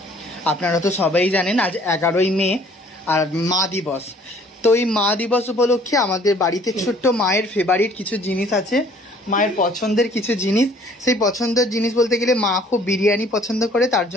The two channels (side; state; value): both; normal; correlation 0.57